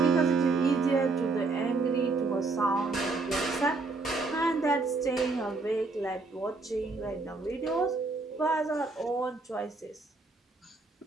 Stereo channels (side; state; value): left; quieter; 3.7 dB